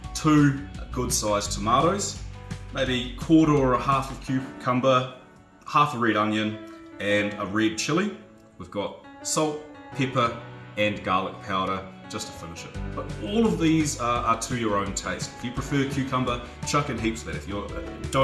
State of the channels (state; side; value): identical; both; correlation 1.00